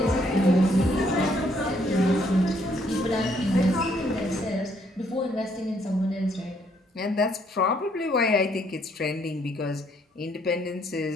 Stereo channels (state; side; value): normal; both; correlation 0.68